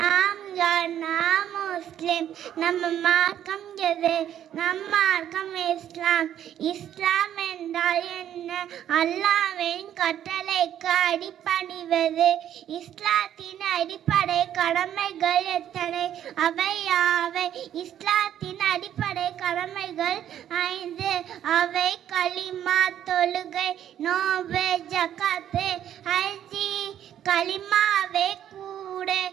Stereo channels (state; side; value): quieter; left; 10.6 dB